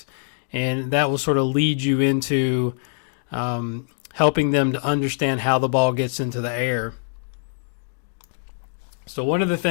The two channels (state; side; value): silent; right; digital silence